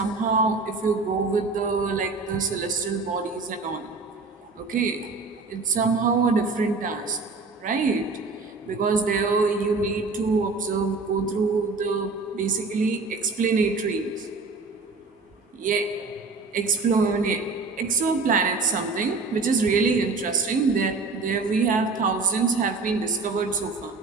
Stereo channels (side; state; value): left; quieter; 4.0 dB